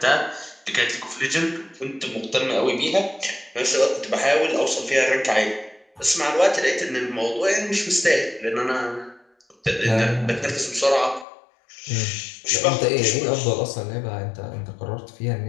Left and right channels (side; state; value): right; drops out; at 11.2 s